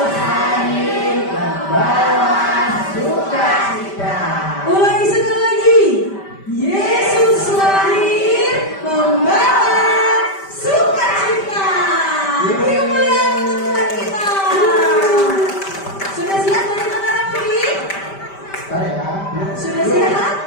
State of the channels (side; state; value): right; late; 5.1 ms